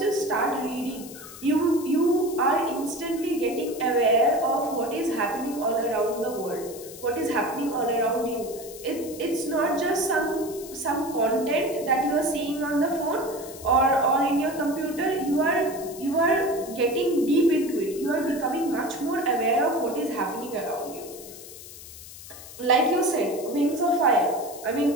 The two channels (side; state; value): left; noise; hiss, 15 dB below the sound